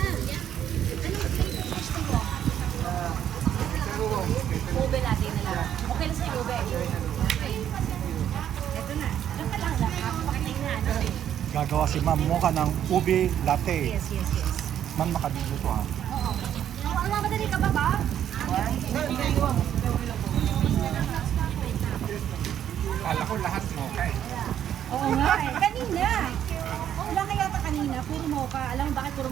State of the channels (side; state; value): left; quieter; 10.1 dB